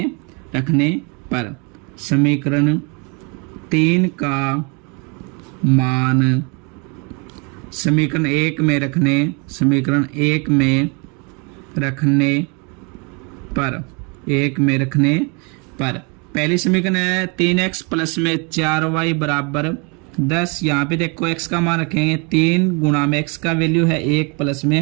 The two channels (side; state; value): left; quieter; 32.4 dB